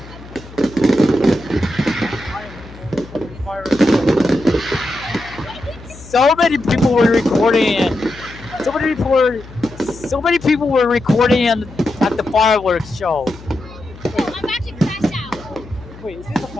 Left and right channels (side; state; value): left; noise; hum, 18 dB below the sound